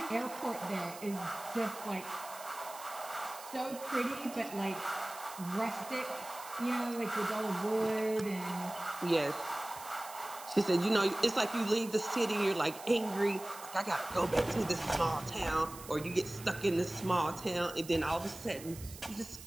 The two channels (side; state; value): right; noise; hiss, 15 dB below the sound